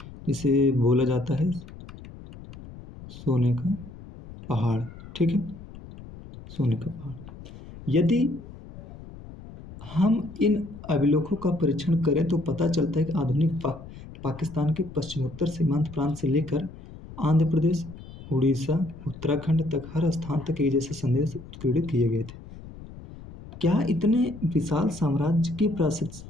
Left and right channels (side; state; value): left; noise; rumble, 16 dB below the sound